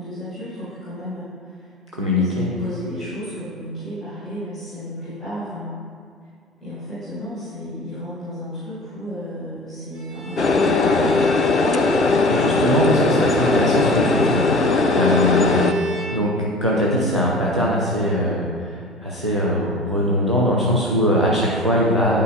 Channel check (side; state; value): both; normal; correlation 0.36